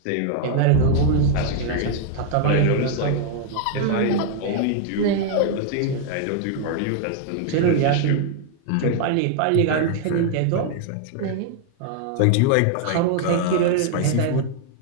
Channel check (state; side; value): different; both; correlation 0.00